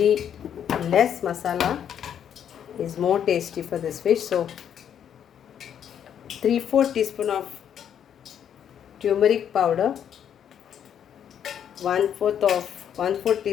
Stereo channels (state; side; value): quieter; right; 9.0 dB